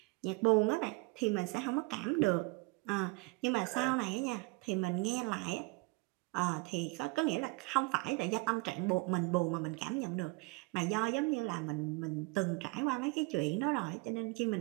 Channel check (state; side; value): quieter; left; 27.5 dB